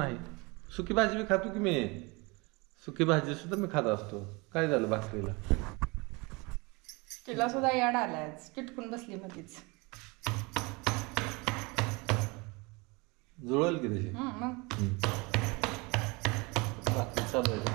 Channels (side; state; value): left; quieter; 26.8 dB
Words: सुकी भाजी बी खातो की मी. सुकी भाजी सुद्धा मी खात असतो. काय झालं भाकरीला? तिला सुद्धा याड आलाय, चिटकून बसली मध्येच. जुळल की तशी मग भाकरी चालू